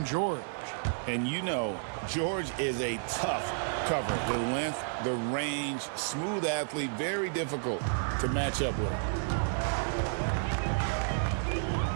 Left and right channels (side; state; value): left; silent; digital silence